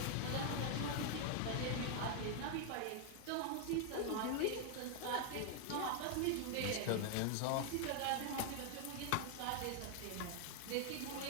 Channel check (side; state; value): both; different; correlation 0.00